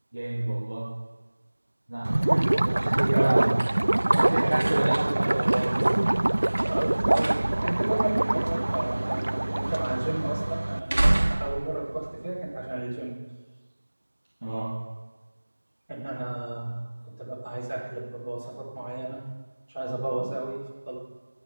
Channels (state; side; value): inverted; both; correlation -1.00